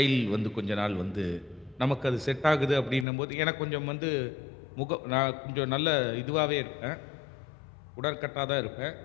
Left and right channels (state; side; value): drops out; right; at 3.1 s